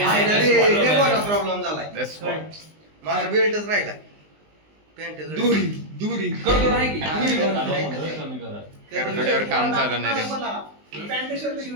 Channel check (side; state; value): left; late; 19 ms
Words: प्रॉब्लेम झालाय. माझा बेल्टच राहिला. पॅन्ट दुरी करतो नाही की करतोड्यावर काम चालू नाही रे.